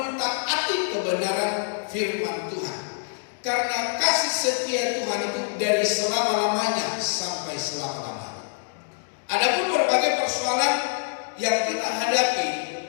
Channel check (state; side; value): silent; right; digital silence